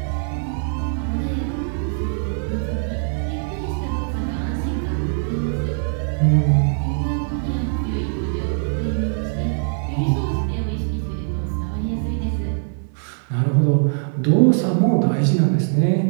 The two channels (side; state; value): left; silent; digital silence